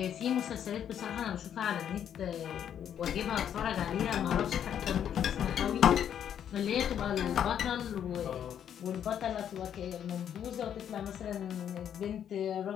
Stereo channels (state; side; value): quieter; right; 9.3 dB